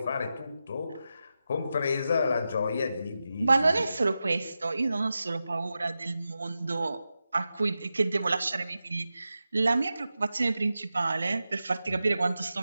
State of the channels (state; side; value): inverted; both; correlation -0.91